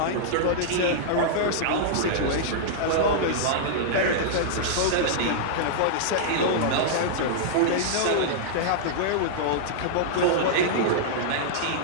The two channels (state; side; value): different; both; correlation -0.02